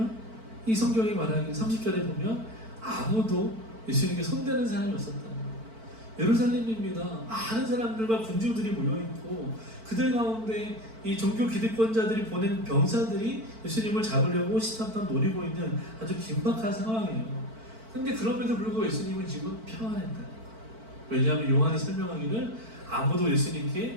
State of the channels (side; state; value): left; late; 4.5 ms